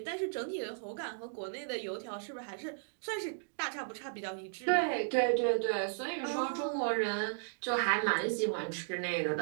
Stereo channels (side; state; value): left; silent; digital silence